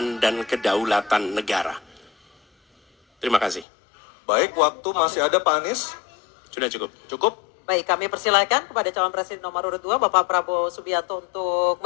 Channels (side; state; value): right; drops out; at 3.7 s